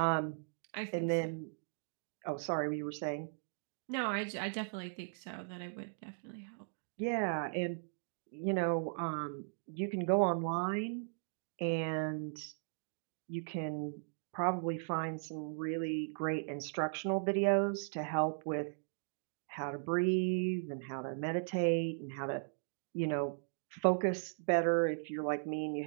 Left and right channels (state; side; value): silent; left; digital silence